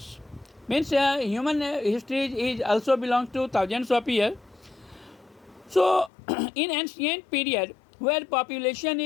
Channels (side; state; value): right; drops out; at 6.1 s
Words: Means human history is also belongs to thousands of years. So in ancient period, where population